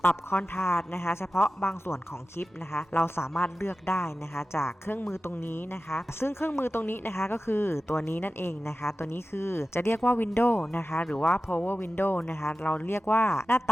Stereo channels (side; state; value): both; normal; correlation 0.95